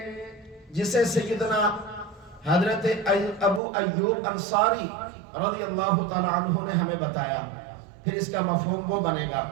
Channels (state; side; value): drops out; left; at 3.6 s